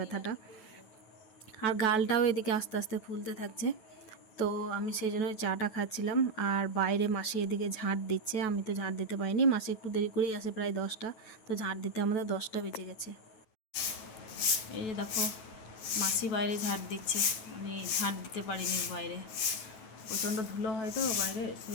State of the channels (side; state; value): right; late; 9.2 ms